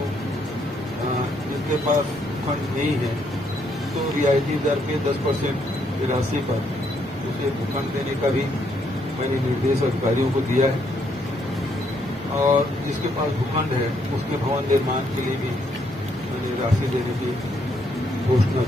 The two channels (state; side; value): normal; both; correlation 0.73